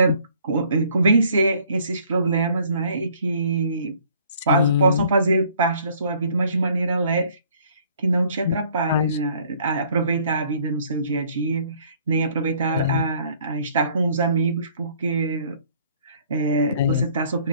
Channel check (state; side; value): inverted; both; correlation -0.59